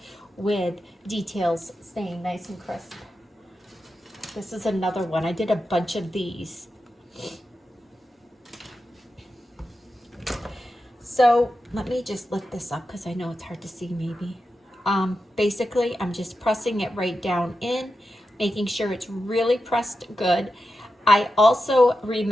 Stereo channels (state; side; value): normal; both; correlation 0.90